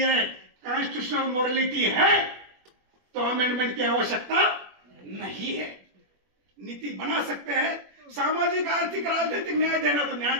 कॉन्स्टिट्यूशनल मोरालिटी है तो अमेंडमेंट की आवश्यकता नहीं है। नीति बना सकते हैं, सामाजिक आर्थिक राजनीतिक न्याय देना तो न्याय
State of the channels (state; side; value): late; left; 21 ms